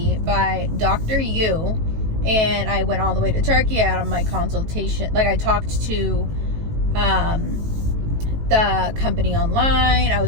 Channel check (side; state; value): left; late; 18 ms